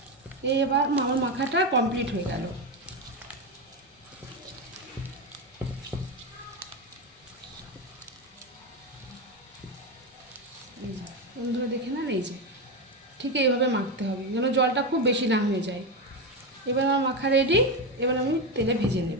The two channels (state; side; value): normal; both; correlation 0.13